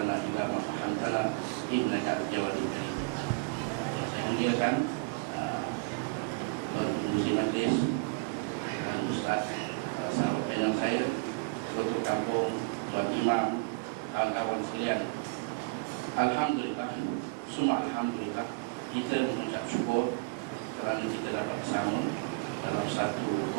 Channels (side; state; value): left; quieter; 30.3 dB